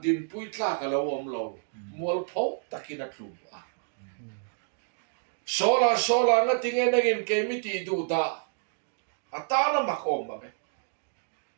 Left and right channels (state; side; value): silent; left; digital silence